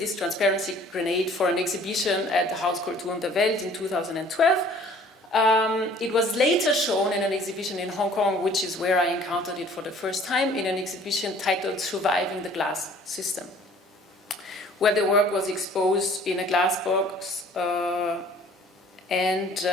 transparency grenade for an exhibition at the Hauskultur der Welt in 2012. It was later shown in an exhibition in Hong Kong, which is where I encountered it for the first time, in an exhibition titled Surviving the Glass System, where the work was exposed in a glass box and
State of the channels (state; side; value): normal; both; correlation 0.53